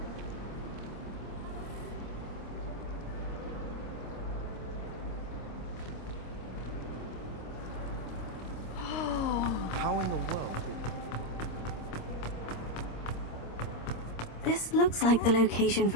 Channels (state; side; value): late; right; 26 ms